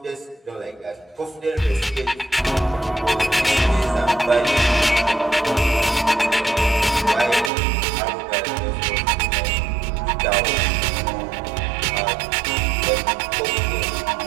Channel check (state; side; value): drops out; left; at 7.5 s